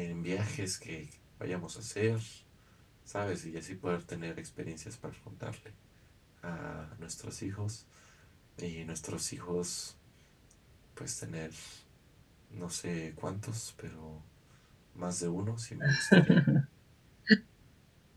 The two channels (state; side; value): identical; both; correlation 1.00